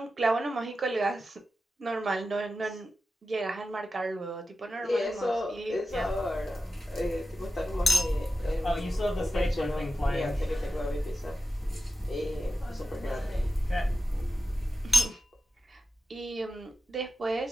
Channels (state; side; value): normal; both; correlation 0.92